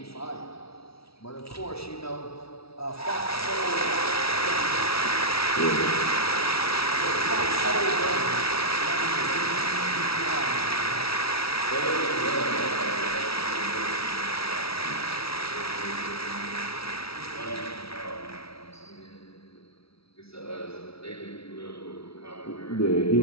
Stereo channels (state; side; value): late; right; 0.76 ms